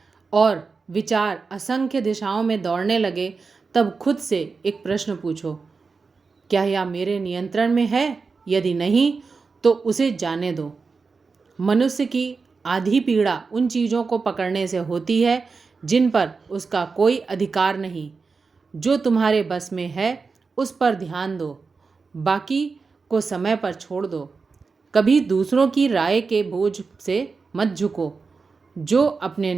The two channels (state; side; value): quieter; left; 4.6 dB